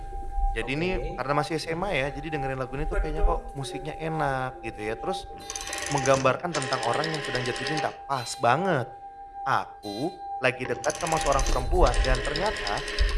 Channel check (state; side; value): identical; both; correlation 1.00